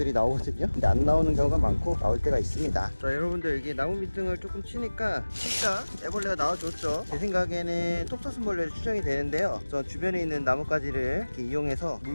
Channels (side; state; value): both; inverted; correlation -1.00